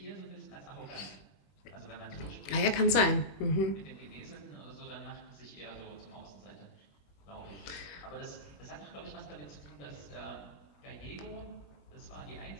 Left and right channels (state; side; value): late; right; 21 ms